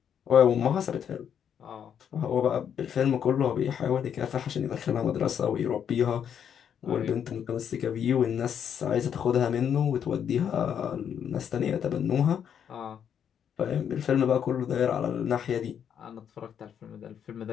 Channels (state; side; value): quieter; right; 8.5 dB